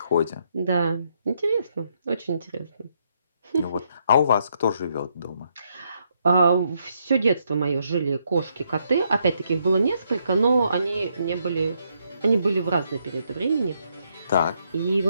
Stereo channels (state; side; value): inverted; both; correlation -0.76